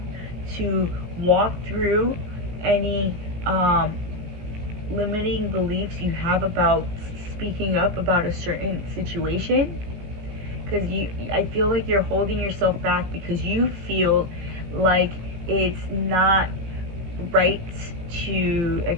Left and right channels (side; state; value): left; late; 17 ms